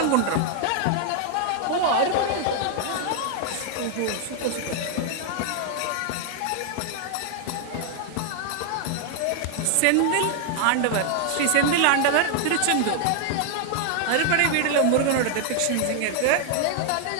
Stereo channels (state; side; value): different; both; correlation 0.00